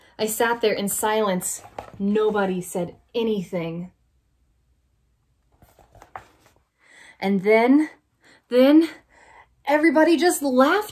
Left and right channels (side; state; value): both; identical; correlation 1.00